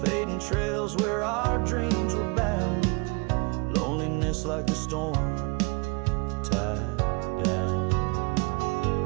fading trails where our dreams were bound. Loneliness like the storm tied down.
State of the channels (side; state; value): left; quieter; 29.2 dB